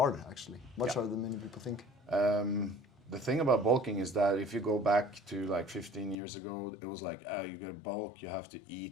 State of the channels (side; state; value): right; drops out; at 6.2 s